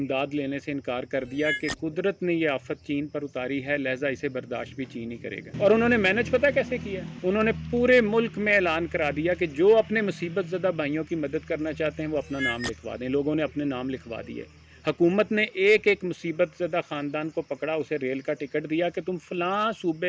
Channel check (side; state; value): both; identical; correlation 1.00